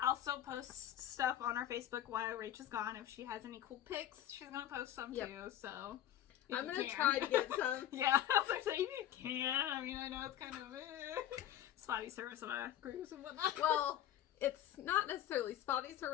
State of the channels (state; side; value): quieter; right; 11.8 dB